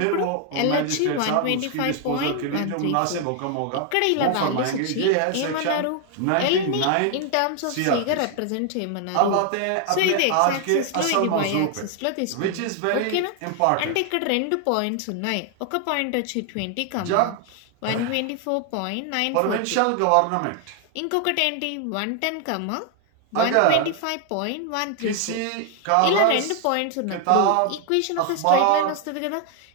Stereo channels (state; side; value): different; both; correlation 0.00